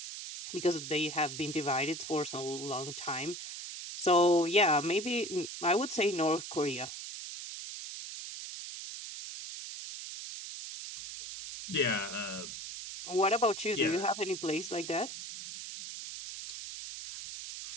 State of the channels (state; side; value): noise; right; hiss, 9 dB below the sound